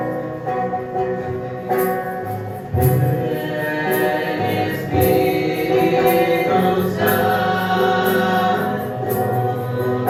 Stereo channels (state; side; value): identical; both; correlation 1.00